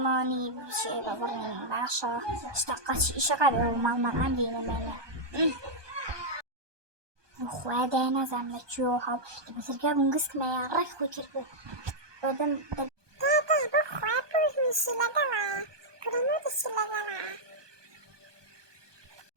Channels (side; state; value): left; late; 1.2 ms